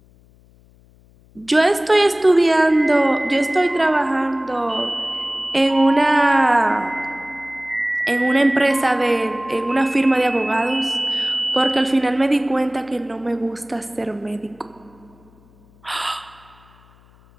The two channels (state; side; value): noise; left; hum, 29 dB below the sound